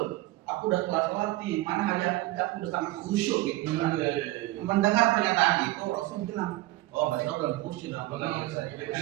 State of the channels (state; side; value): quieter; left; 18.3 dB